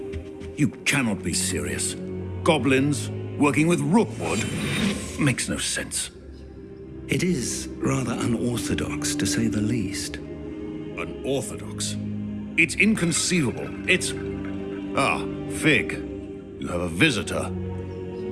You cannot be serious. Goblins working with Rookwood? Makes no sense. It is rather unorthodox, to say the least. Unorthodox? It's inconceivable. It's... Ah, Fig. You have a visitor.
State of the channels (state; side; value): identical; both; correlation 1.00